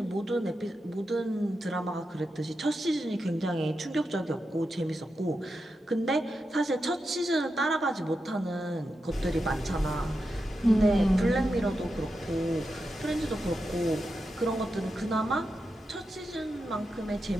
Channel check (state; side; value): normal; both; correlation 0.88